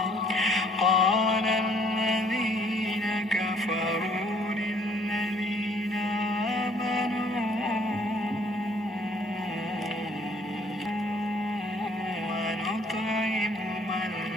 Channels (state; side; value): normal; both; correlation 0.61